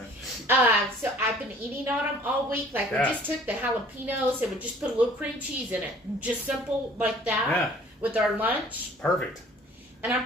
So I've been eating on them all week. Like we just took the jalapenos and we just put a little cream cheese in it. Just simple like that with our lunch. Perfect. And I'm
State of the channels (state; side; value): normal; both; correlation 0.53